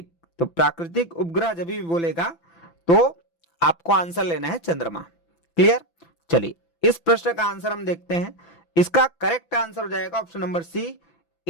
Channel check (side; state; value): right; late; 5.9 ms